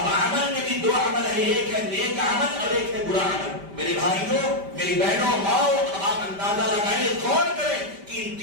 عمل میں بھی 2 عمل ہے, ایک ہے نیک عمل اور ایک ہے برا عمل. میرے بھائیوں, میری بہنوں, ماؤں, آپ اندازہ لگائیں, غور کریں کہ ان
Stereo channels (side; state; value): left; late; 5.1 ms